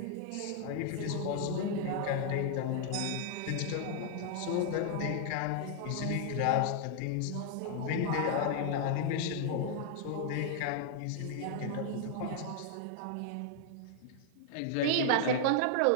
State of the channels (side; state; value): both; different; correlation 0.00